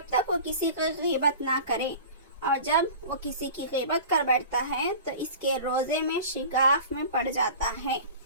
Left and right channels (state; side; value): inverted; both; correlation -0.38